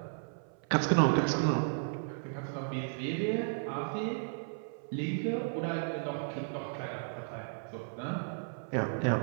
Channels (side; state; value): left; silent; 55 dB below the other